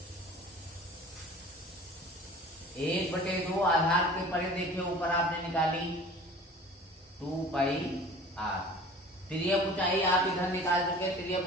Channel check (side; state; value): both; normal; correlation 0.44